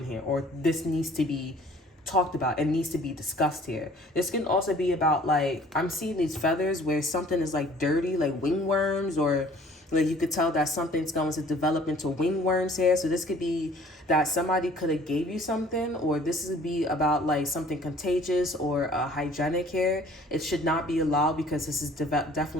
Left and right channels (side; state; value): both; normal; correlation 0.53